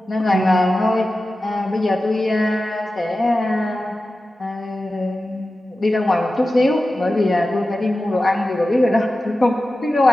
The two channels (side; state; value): both; normal; correlation 0.94